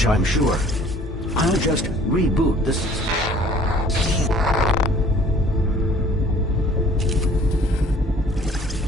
I'm sure. I'll just reboot the system.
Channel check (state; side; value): normal; both; correlation 0.54